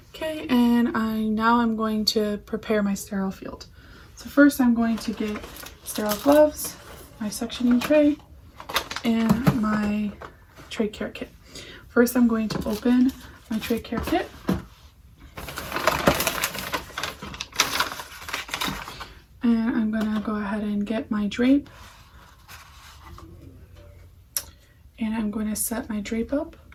Okay, and now I'm going to prepare my sterile field. So first I'm going to get sterile gloves, my suctioning tray, and my trach care kit. First I'm going to open my trach care kit. And I'm going to go ahead and get my drape. And I'm going to set my drape up.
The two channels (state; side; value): identical; both; correlation 1.00